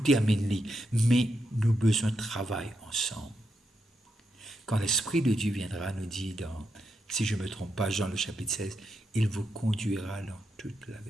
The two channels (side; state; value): both; normal; correlation 0.84